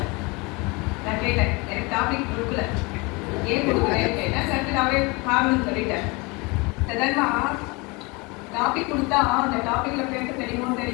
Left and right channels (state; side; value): quieter; right; 26.9 dB